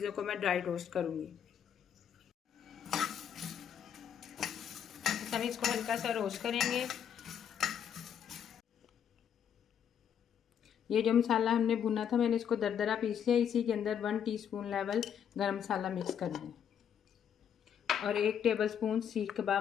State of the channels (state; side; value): quieter; right; 8.6 dB